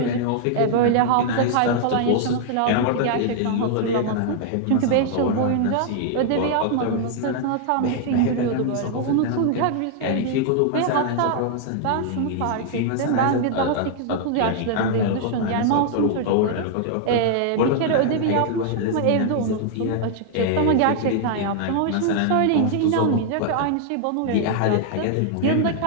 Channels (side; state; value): both; different; correlation -0.01